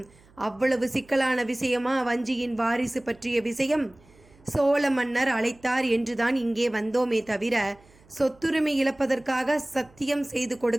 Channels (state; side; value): noise; right; hum, 28 dB below the sound